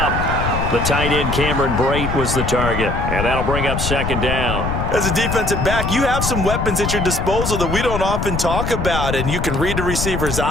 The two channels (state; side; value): noise; left; rumble, 2 dB below the sound